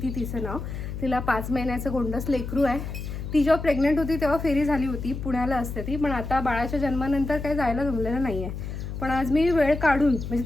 तिचं नाव. तिला 5 महिन्याचं गोंडस लेकरू आहे. ती जेव्हा प्रेग्नेंट होती तेव्हा फेरी झाली होती, पुण्याला असते ती. पण आता बाळाच्या जन्मानंतर काही जायला जमलेलं नाही आहे. पण आज मी वेळ काढून,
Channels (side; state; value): left; noise; hum, 7 dB below the sound